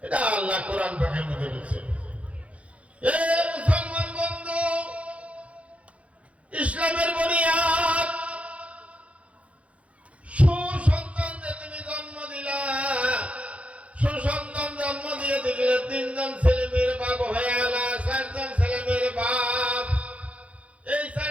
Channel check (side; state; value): left; late; 0.064 ms